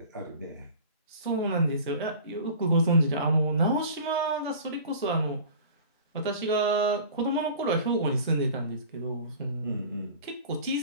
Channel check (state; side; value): inverted; both; correlation -0.41